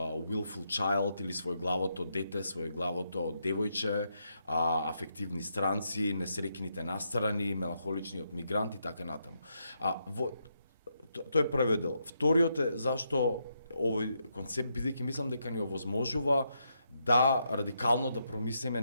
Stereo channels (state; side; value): inverted; both; correlation -0.80